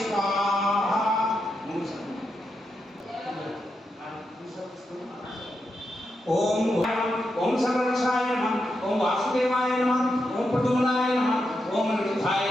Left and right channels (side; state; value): both; normal; correlation 0.85